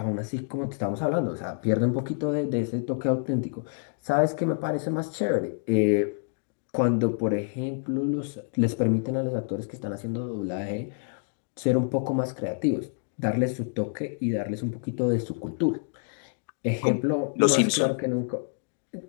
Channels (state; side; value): silent; right; digital silence